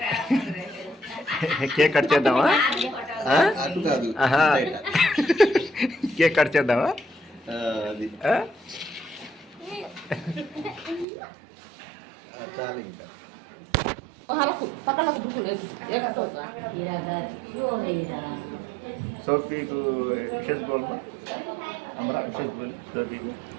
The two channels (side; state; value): left; drops out; at 11.1 s